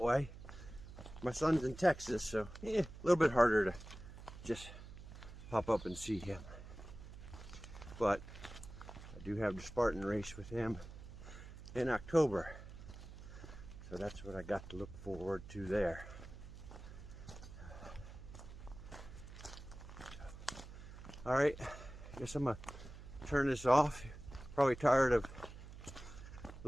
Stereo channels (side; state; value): right; noise; hum, 14 dB below the sound